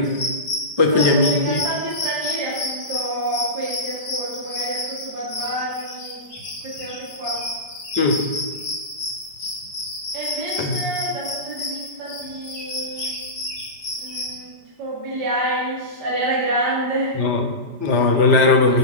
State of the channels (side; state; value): left; late; 5.0 ms